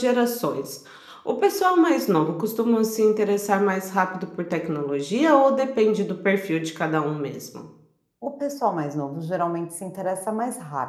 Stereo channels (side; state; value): both; identical; correlation 1.00